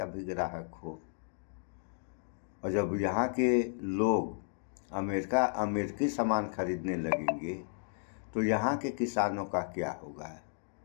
भी ग्राहक हो। और जब यहाँ के लोग अमेरिकी सामान खरीदने लगेंगे तो यहाँ के किसानों का क्या होगा?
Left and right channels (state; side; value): silent; right; digital silence